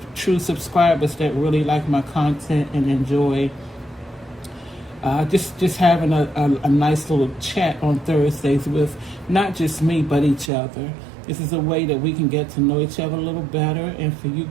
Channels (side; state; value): left; drops out; at 10.5 s